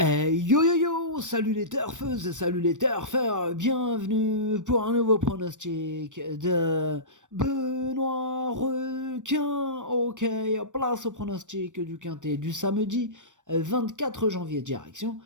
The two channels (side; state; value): left; late; 0.86 ms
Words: yo yo, salut les turfeuses, salut les turfeurs, bienvenue pour un nouveau pronostic de Benoît Requin. Ok, place au pronostic du quintet du samedi 24 janvier, direction